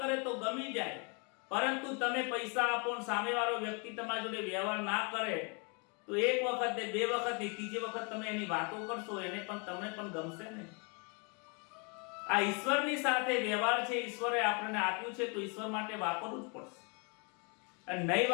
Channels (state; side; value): quieter; right; 34.5 dB